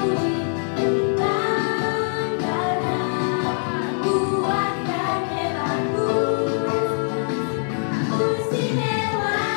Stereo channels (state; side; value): silent; right; 63 dB below the other